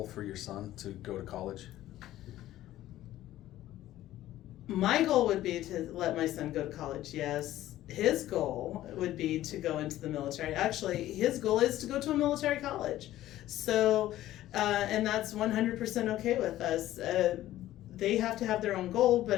for your son, to go to college? My goal would be to let my son go to college, yes. His goal would be to go into the military. Actually, his goal is to go to a military college. So, and that's 100% okay with us. They have to have their own goal, but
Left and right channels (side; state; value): right; quieter; 14.2 dB